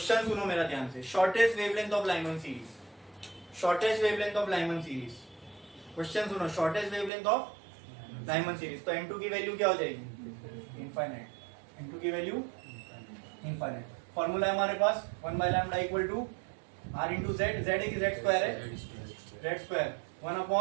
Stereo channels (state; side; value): drops out; left; at 7.1 s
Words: सुनो मेरा ध्यान से, shortest wavelength of Lyman series, shortest wavelength of Lyman series, question सुनो, shortest wavelength of Lyman series, तो n2 की वैल्यू क्या हो जाएगी? इनफाइनाइट। n2 की वैल्यू इनफाइनाइट। फॉर्मूला है हमारे पास 1 by lambda equal to r into Z, Z है कि जेड स्क्वायर है? Z square, 1